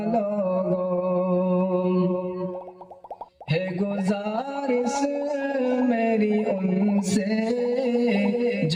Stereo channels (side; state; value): both; identical; correlation 1.00